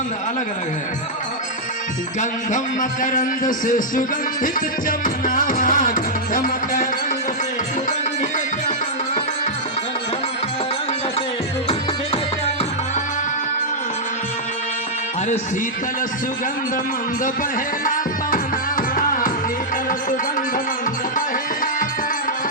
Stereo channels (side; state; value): both; normal; correlation -0.07